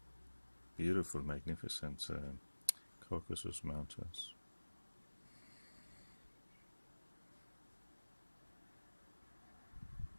Beautiful, magnificent Caucasus Mountains.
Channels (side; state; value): both; inverted; correlation -1.00